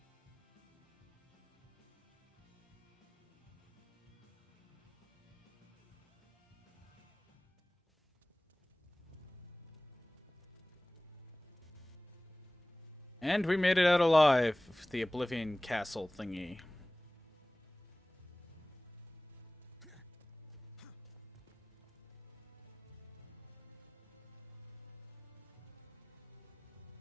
And we made it out alive of the Oblivion Castle thingy.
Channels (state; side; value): normal; both; correlation 0.98